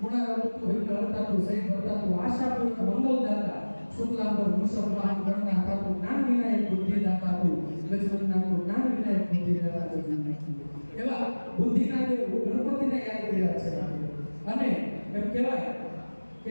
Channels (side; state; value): both; inverted; correlation -1.00